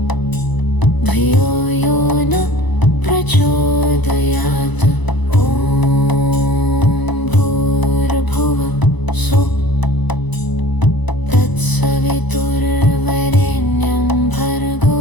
धियो यो नः प्रचोदयात्। ॐ भूर्भुवः स्वः तत्सवितुर्वरेण्यं भर्गो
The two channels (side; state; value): right; late; 1.0 ms